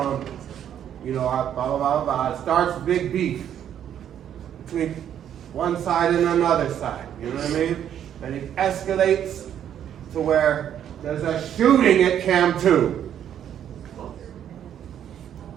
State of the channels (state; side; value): quieter; left; 9.8 dB